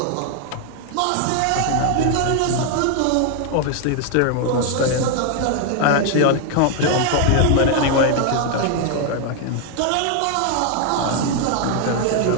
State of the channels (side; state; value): both; different; correlation 0.00